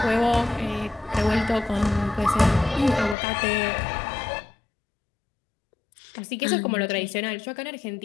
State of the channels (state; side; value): drops out; right; at 3.2 s